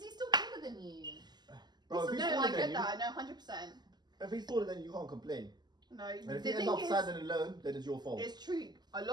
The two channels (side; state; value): left; late; 0.21 ms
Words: he's still taller than you. Bro, if he's No, taller I than get you, that. No, 100%. if he's taller than you, you can't complain. No, And if the you thing end up is, sad and alone, then it's your fault. it's true. A